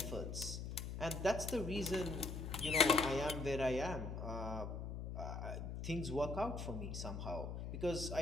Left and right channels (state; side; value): noise; left; hum, 5 dB below the sound